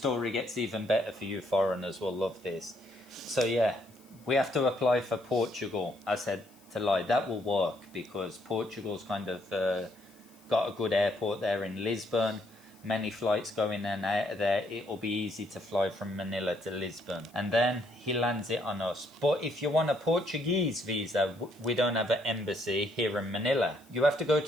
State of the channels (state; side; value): noise; left; hiss, 28 dB below the sound